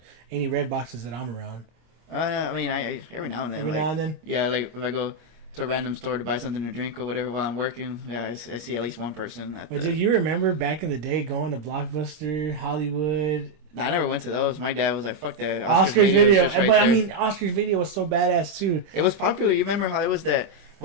any Red Boxes that I'm around. I mean, I every now and then. Every like, now and then. Yeah, like if I go to a random store to buy something to drink or whatever while I'm working, yeah, I see at least one person. But do you remember back in the day going to Blockbuster, Hollywood, I never went to those. My dad was like, "Fuck that." Oscar's Video? is just right But I there. mean, Oscar's Video was so badass too. It was popular. You remember how it was that?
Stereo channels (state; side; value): late; left; 25 ms